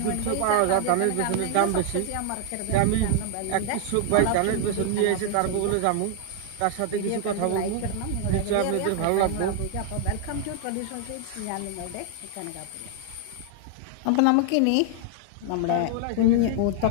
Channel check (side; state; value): both; different; correlation 0.00